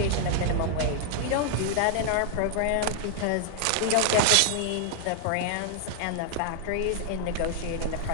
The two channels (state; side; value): different; both; correlation 0.00